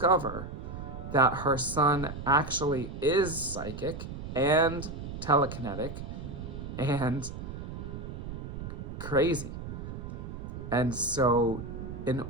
that her son actually is psychic and telekinetic and crazy. And so in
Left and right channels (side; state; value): right; noise; rumble, 8 dB below the sound